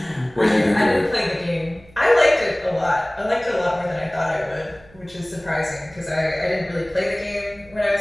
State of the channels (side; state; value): right; noise; hum, 26 dB below the sound